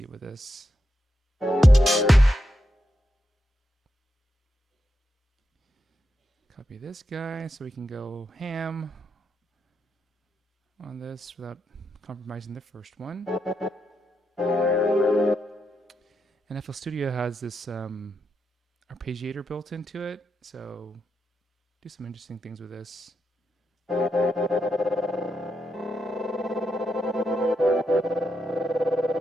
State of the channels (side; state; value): both; normal; correlation 0.85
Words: with this. Copy this guy so we can go ham on this without compromising the first one. And FL Studio has this arpeggiator built into it, so do some interesting things with this.